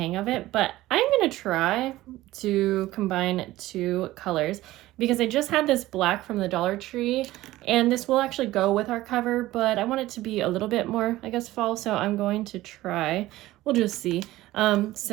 of it, but I'm going to try to combine two colors because I just had this black from the Dollar Tree and this will actually go with our cover, but I want it to be a little bit more, I guess, fall, so I'm going to try. We'll just see.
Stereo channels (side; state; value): left; quieter; 16.7 dB